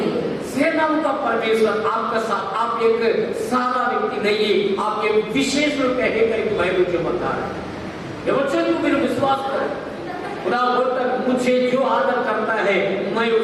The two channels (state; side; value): identical; both; correlation 1.00